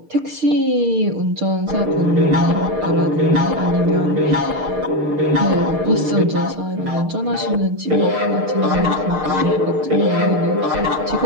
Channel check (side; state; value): left; late; 6.6 ms